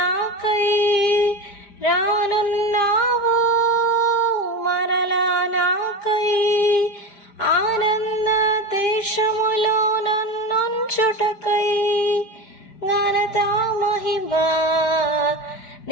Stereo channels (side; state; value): right; late; 4.9 ms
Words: రానున్నావు మరలా నాకై. ఆనంద దేశములో నన్నుంచుటకై, ఘనత మహిమా